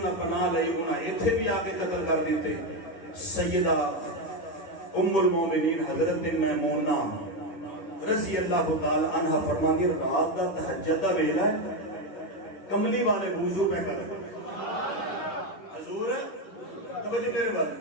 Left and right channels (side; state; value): right; late; 10 ms